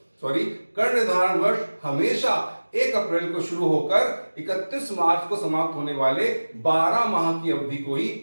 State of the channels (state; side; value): inverted; both; correlation -1.00